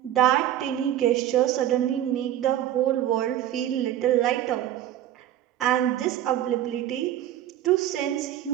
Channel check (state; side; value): quieter; left; 12.0 dB